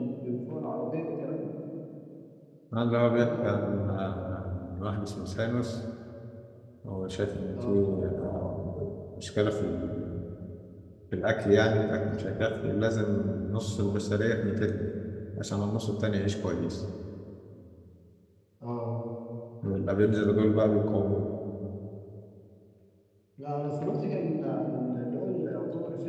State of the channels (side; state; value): both; identical; correlation 1.00